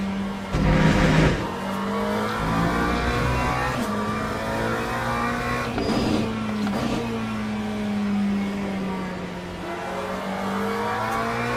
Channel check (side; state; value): both; identical; correlation 1.00